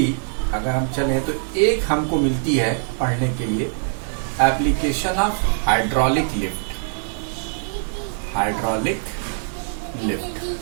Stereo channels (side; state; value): left; silent; 64 dB below the other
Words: अगर हम चले तो एक हमको मिलती है पढ़ने के लिए, application of hydraulic lift. Hydraulic lift